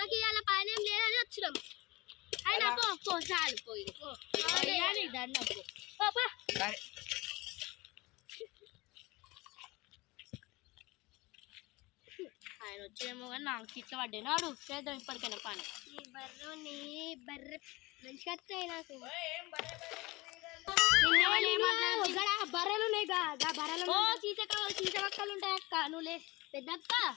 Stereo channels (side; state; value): right; quieter; 22.3 dB